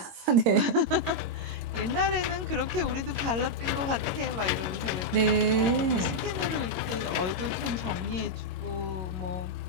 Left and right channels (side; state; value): left; late; 22 ms